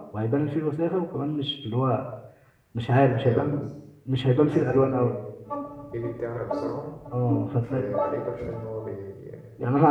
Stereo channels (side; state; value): both; identical; correlation 1.00